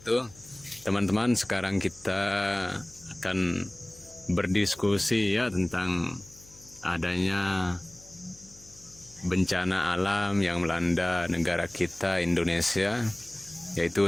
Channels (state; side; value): noise; left; hum, 23 dB below the sound